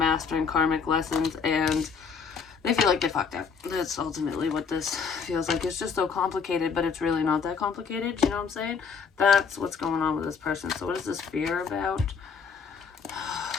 karmic lessons and they feel like they fucked up. That's ultimately what this feels like. It's just so complicated, but it's really not that complicated. You know what I'm saying? That's what's going on with this person. So what is this fear about?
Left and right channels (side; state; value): right; quieter; 5.8 dB